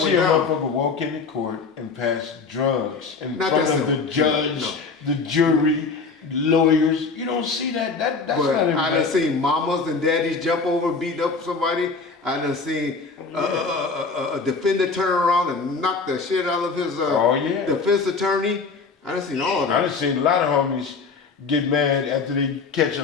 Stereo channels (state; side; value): quieter; right; 4.6 dB